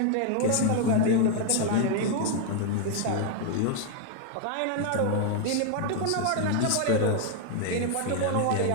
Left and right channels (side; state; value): both; different; correlation 0.00